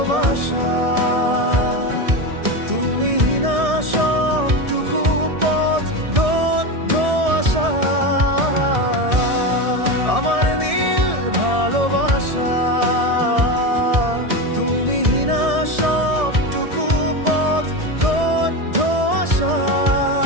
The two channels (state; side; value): late; left; 1.7 ms